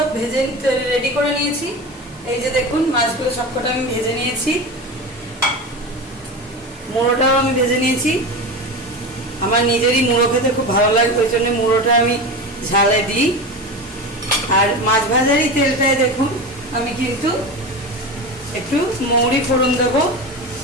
ভেজে রেডি করে নিয়েছি। এই যে দেখুন মাছগুলো সবকটা আমি ভেজে নিয়েছি। মুড়োটাও আমি ভেজে নিয়েছি। আমার নিজেরই মুড়ো খেতে খুব ভালো লাগে, ওই জন্য মুড়োটা আমি ঝালে দিই। আর মাছ ভাজারই তেলটায় দেখুন আমি কিন্তু একটু মৌরি ফোড়ন দেবো।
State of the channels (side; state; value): both; normal; correlation 0.25